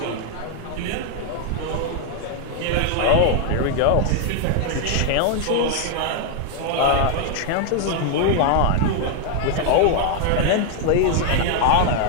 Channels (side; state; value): both; different; correlation 0.00